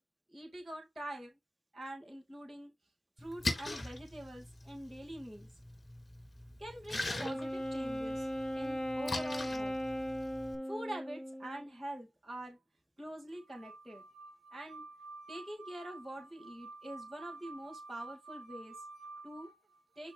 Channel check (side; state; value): both; normal; correlation 0.96